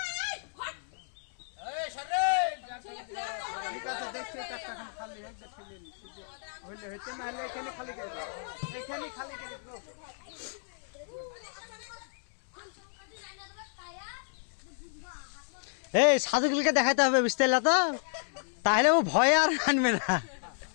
খালি হইলে হইতে না হলে এখানে খালি এখানে খালি এই সাধুগুলোকে দেখাইতে হবে বুঝতে পারলা তো, তাহলে ও ভয় আর আনবে না।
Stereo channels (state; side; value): silent; right; 57 dB below the other